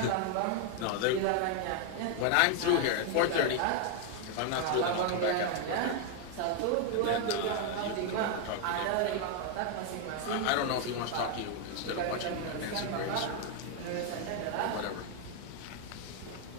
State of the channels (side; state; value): both; different; correlation 0.01